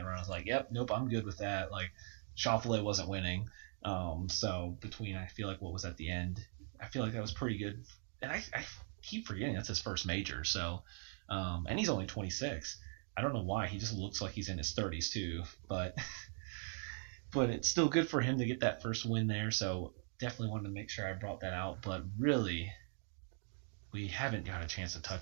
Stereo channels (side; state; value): left; silent; 51 dB below the other